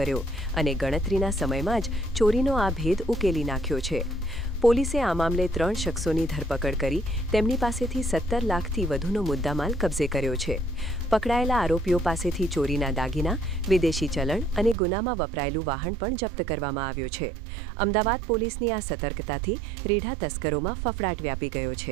અને ગણતરીના સમયમાં જ ચોરીનો આ ભેદ ઉકેલી નાખ્યો છે. પોલીસે આ મામલે 3 શખ્સોની ધરપકડ કરી તેમની પાસેથી 17 લાખથી વધુનો મુદ્દામાલ કબજે કર્યો છે. પકડાયેલા આરોપીઓ પાસેથી ચોરીના દાગીના, વિદેશી ચલણ અને ગુનામાં વપરાયેલું વાહન પણ જપ્ત કરવામાં આવ્યું છે. અમદાવાદ પોલીસની આ સતર્કતાથી રેઢા તસ્કરોમાં ફફડાટ વ્યાપી ગયો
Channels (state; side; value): drops out; left; at 14.8 s